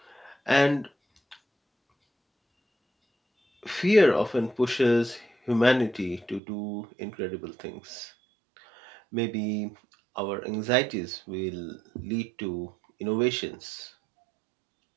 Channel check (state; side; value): drops out; left; at 6.4 s